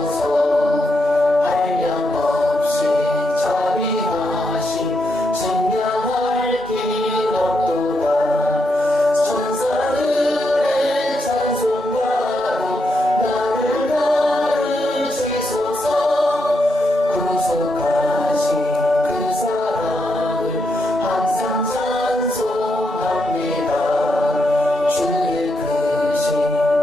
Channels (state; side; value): normal; both; correlation 0.81